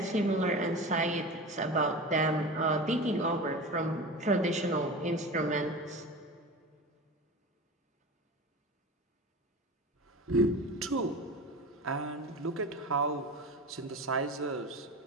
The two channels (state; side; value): normal; both; correlation 0.31